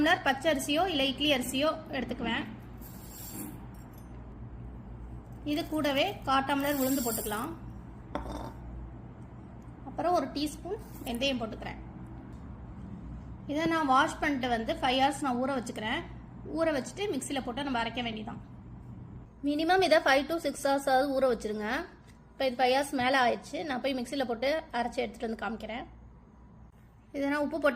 பச்சை அரிசியோ இல்லை இட்லி அரிசியோ எடுத்துக்குவேன். இது கூடவே 1/4 டம்ளர் உளுந்து போட்டுக்கலாம். அப்புறம் ஒரு டீஸ்பூன் வெந்தயம் போட்டுக்கிறேன். இதை நான் வாஷ் பண்ணிட்டு 5 hours நான் ஊற வச்சுக்கிறேன். ஊற வச்சுட்டு மிக்சியில் போட்டு நம்ம அரைக்க வேண்டியதான். மினிமம் இதை 5 to 6 hours ஊற வச்சுருங்க. இப்போ இது 5 hours மேலே ஆயிடுச்சு. நான் போய் மிக்சியில் போட்டு அரைச்சி எடுத்துகிட்டு வந்து காமிக்கிறேன். இதை நான் உப்பு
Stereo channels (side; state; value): both; identical; correlation 1.00